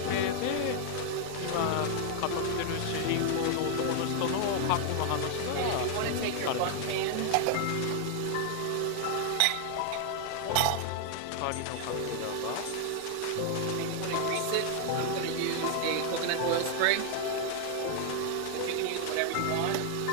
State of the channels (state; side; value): different; both; correlation 0.00